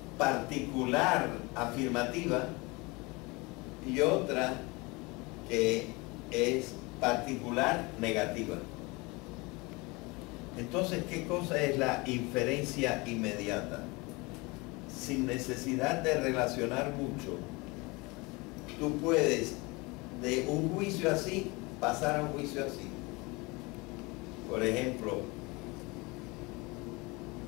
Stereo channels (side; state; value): right; quieter; 25.4 dB